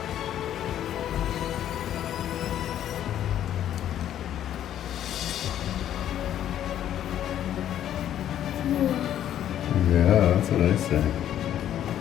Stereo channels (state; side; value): quieter; right; 11.0 dB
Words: Yeah, that's what I say.